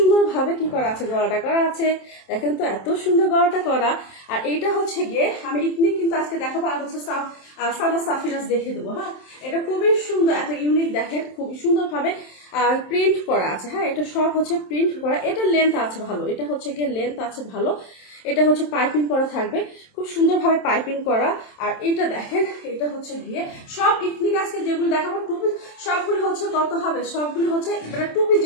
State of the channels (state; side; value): late; right; 27 ms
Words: কি করা আছে, গলাটা করা আছে, দেখেন তো এত সুন্দর গলাটা করা। আর এইটা হচ্ছে গিয়ে আমি ইথনিক কিন্তু আজকে দেখাবো, আর হচ্ছে সানা সাফিনাস দেখে দেবো। হ্যাঁ, এটা খুবই সুন্দর, এত ইউনিক, দেখেন খুবই সুন্দরভাবে প্রিন্ট করা আছে। হ্যাঁ, এটা সব হচ্ছে প্রিন্ট করা। এটা লেন্থ আছে ভালো, এটা হচ্ছে গিয়ে লেন্থ আছে ভালো। এটা হচ্ছে পাইপিং করা থাকবে, খুব সুন্দরভাবে পাইপিং করা। আর এটা দেখেন, এটা হচ্ছে গিয়ে সব ইথনিক আজকে যেগুলো দেখাবো টু পিস, সবগুলো হচ্ছে কত হবে? সবগুলো হচ্ছে মানে টু পিস